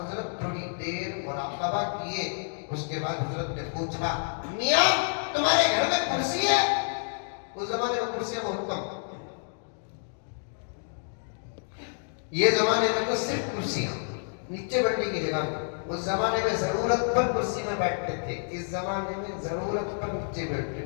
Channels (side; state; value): right; silent; digital silence